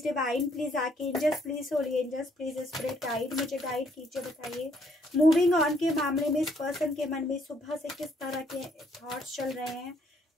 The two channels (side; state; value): both; normal; correlation 0.68